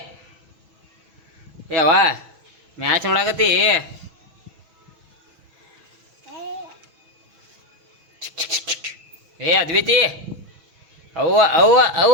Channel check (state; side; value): late; left; 6.1 ms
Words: ಯಾವ ಮ್ಯಾಚ್ ನೋಡಾಕತ್ತಿ ಏ ಅದ್ವೈತಿ ಅವ್ವ ಅವ್ವ